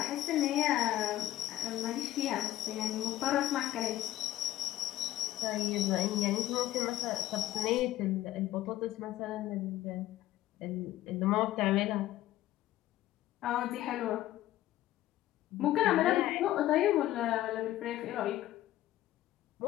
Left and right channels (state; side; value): quieter; right; 14.6 dB